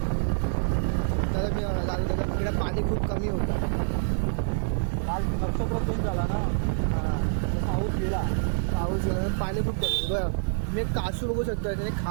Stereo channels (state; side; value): silent; left; digital silence